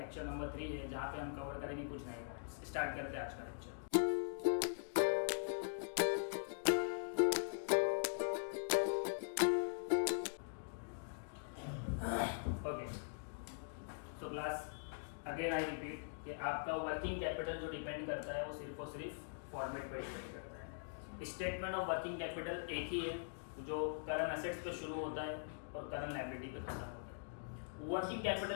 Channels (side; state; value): right; silent; digital silence